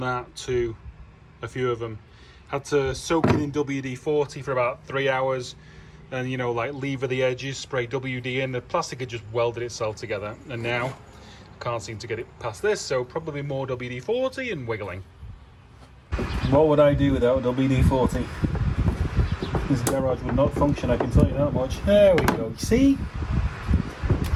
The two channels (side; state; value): both; identical; correlation 1.00